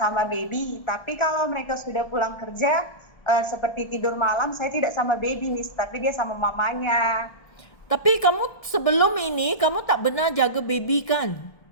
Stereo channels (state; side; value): late; right; 1.7 ms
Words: baby. Tapi kalau mereka sudah pulang kerja, seperti tidur malam, saya tidak sama baby, Miss, tapi dia sama mamanya. Tapi kamu sebelum ini, kamu tak benar jaga baby kan?